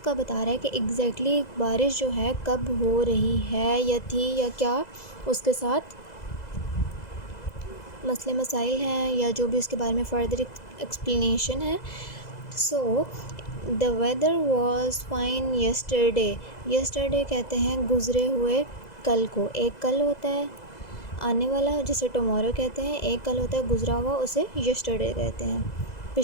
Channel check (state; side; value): late; right; 2.0 ms